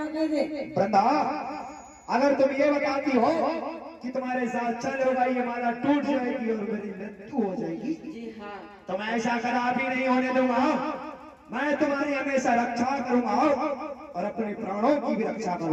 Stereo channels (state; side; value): identical; both; correlation 1.00